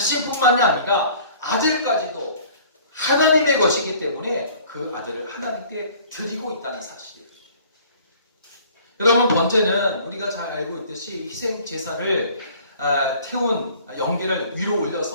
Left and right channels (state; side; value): inverted; both; correlation -0.52